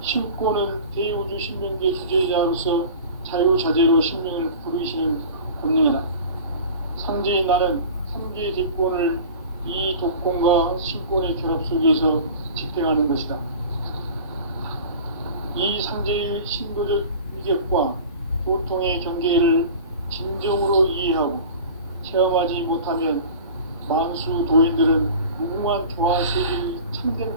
신권은 대우주 신명계 주제자로서 자유자재로 신명을 부르시는 권능이다. 상제인 나는 상계 대권을 이 독권과 신권의 결합 속에서 집행하는 것이다. 이 상제의 신도적 위격과 보통의 경계를 진정으로 이해하고 체험하지 못하면 만수 도인들은 무궁한 조화 세계의 참된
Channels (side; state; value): both; inverted; correlation -0.38